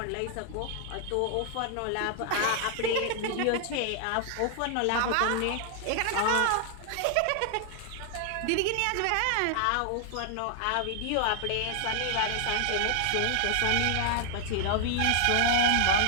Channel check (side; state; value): both; different; correlation 0.00